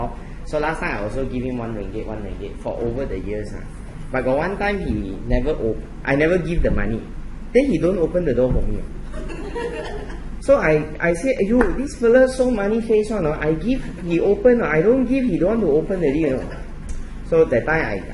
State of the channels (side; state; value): both; identical; correlation 1.00